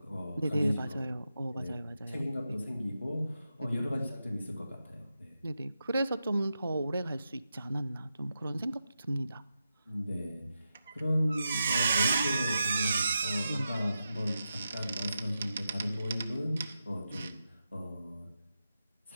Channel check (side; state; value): both; inverted; correlation -0.88